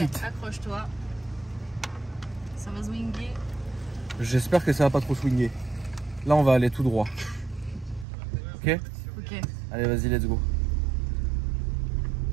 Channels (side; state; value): left; drops out; at 8.1 s